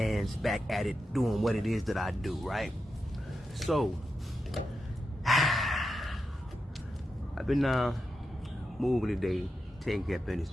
back at it, doing what it is that I do, right? So, I've been moving today, taking care of business,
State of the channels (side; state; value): both; normal; correlation 0.88